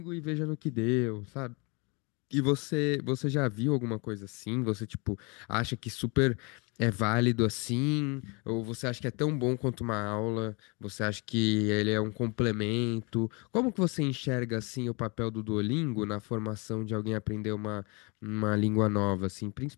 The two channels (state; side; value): quieter; right; 30.7 dB